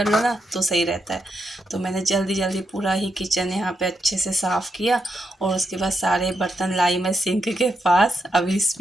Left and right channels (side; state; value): both; normal; correlation 0.83